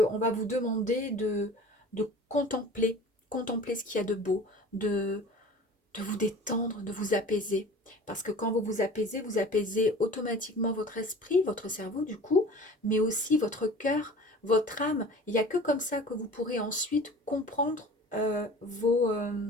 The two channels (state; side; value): normal; both; correlation 0.42